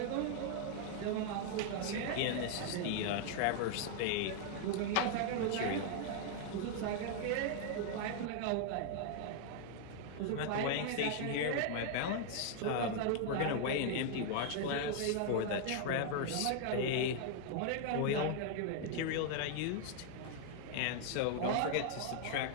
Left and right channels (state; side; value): different; both; correlation 0.00